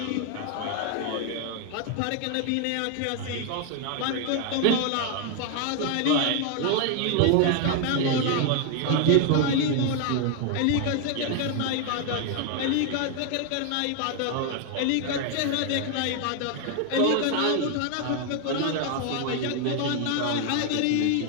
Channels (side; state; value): both; different; correlation 0.01